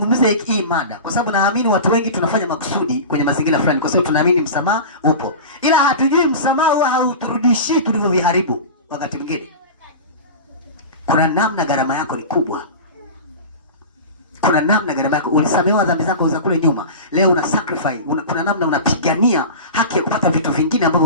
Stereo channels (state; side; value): inverted; both; correlation -0.30